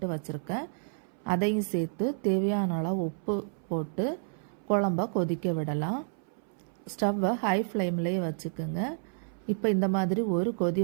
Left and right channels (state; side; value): silent; left; 58 dB below the other